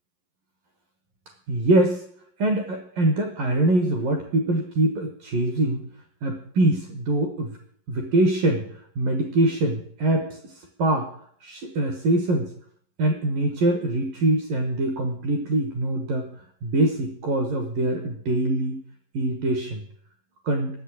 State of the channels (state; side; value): late; left; 11 ms